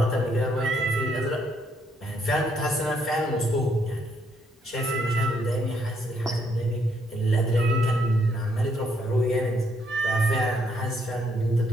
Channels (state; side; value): normal; both; correlation 0.72